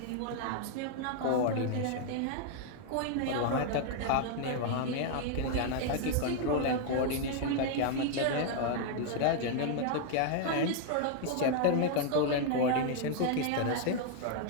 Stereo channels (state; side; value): different; both; correlation -0.01